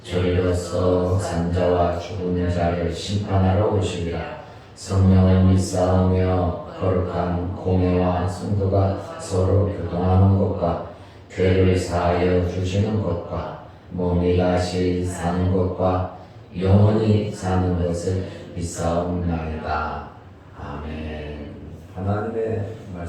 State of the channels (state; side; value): identical; both; correlation 1.00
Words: 저리로서 산자와 죽은 자를 심판하러 오시리라. 성령을 믿사오며 거룩한 공회와 성도가 서로 교통하는 것과 죄를 사하여 주시는 것과 몸이 다시 사는 것과 영원히 사는 것을 믿사옵나이다. 아멘. 하나님의